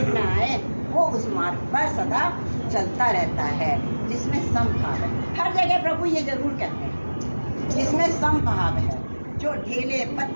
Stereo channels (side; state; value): both; inverted; correlation -1.00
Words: आए, वो उस मार्ग पर सदा चलता रहता है जिसमें समभाव है। हर जगह प्रभु ये जरूर कहते हैं जिसमें समभाव है, जो ढेले